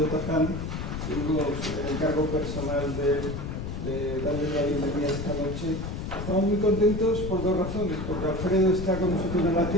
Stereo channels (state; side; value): noise; left; rumble, 5 dB below the sound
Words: Taján, tengo el encargo personal de darle la bienvenida esta noche. Estamos muy contentos por dos razones, porque Alfredo está con nosotros en la